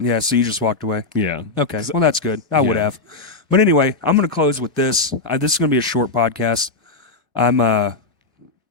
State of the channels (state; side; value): quieter; right; 3.6 dB